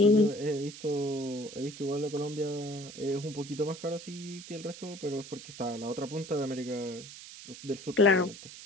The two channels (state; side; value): noise; right; hiss, 14 dB below the sound